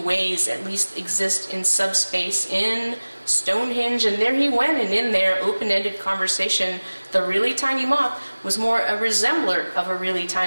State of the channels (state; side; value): inverted; both; correlation -1.00